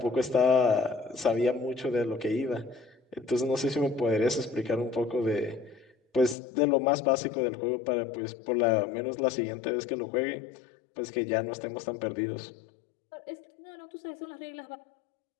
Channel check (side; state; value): right; drops out; at 6.4 s